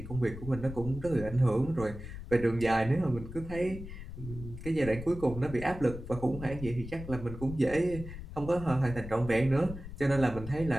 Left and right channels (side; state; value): left; noise; rumble, 11 dB below the sound